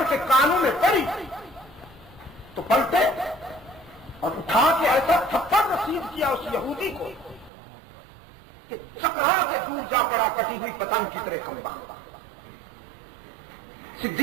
کے کانوں میں پڑی تو پلٹے اور اٹھا کے ایسا تھپڑ رسید کیا اس یہودی کو کہ چکرا سے دور جا پڑا کٹی ہوئی پتنگ کی طرح کمبا۔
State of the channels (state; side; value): drops out; left; at 7.5 s